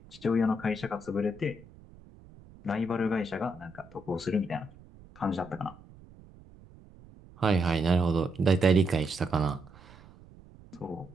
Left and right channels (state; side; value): noise; right; rumble, 22 dB below the sound